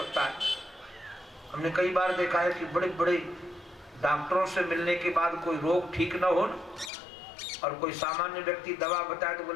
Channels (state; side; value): drops out; right; at 6.9 s